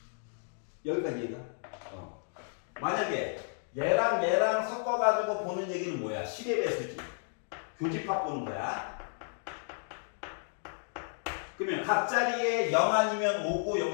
여기까지 이해가? 만약에 얘랑 섞어가지고 보는 얘기는 뭐야? 10의 배수지. 교집합 보는 거야. 그러면 각 자리에 0 아니면 5고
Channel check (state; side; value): silent; right; 56 dB below the other